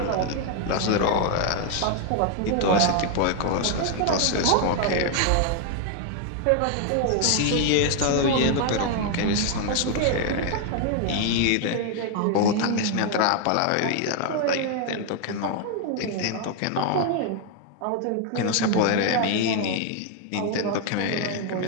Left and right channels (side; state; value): both; different; correlation 0.00